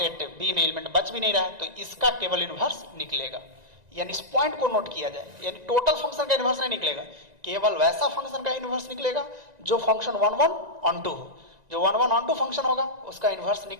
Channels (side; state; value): left; late; 1.9 ms